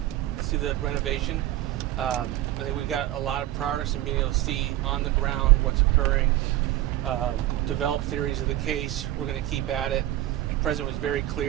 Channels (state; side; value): quieter; left; 14.6 dB